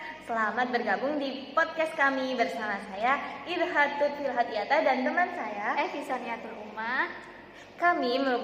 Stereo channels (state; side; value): identical; both; correlation 1.00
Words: selamat bergabung di podcast kami bersama saya Irhatut Filhatiata dan teman saya Evi Saniatul Umah. Kami